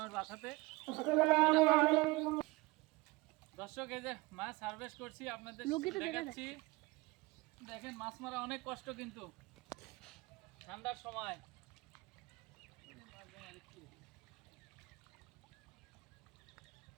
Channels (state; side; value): quieter; left; 22.7 dB